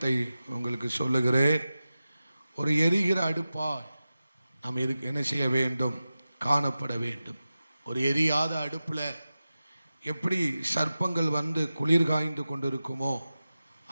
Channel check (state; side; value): inverted; both; correlation -0.94